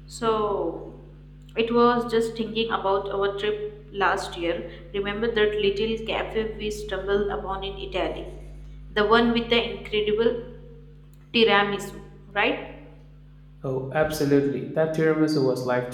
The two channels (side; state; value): both; identical; correlation 1.00